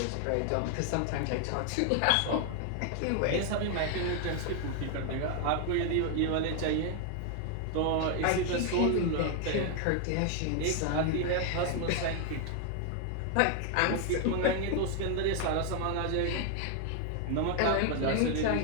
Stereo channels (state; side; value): different; both; correlation 0.00